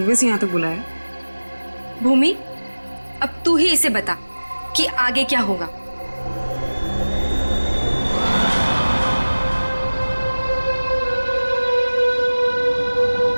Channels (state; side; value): inverted; both; correlation -1.00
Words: से यहाँ तक बुलाया? भूमि, अब तू ही इसे बता कि आगे क्या होगा।